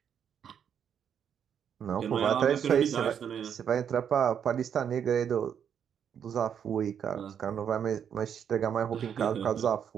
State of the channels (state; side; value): quieter; left; 8.2 dB